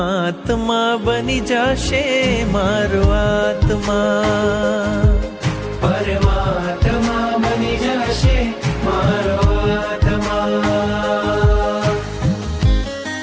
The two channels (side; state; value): both; identical; correlation 1.00